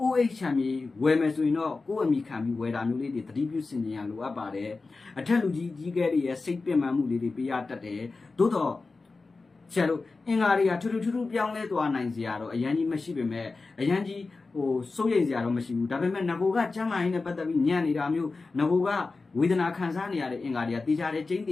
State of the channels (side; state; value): right; quieter; 3.9 dB